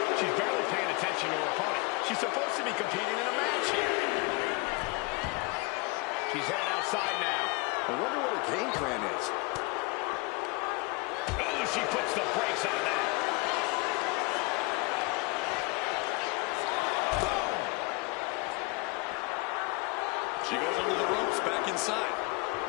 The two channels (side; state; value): right; quieter; 26.5 dB